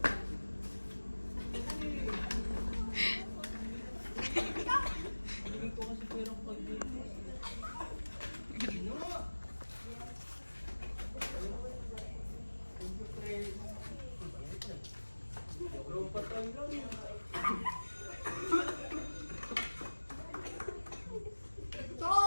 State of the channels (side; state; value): both; inverted; correlation -1.00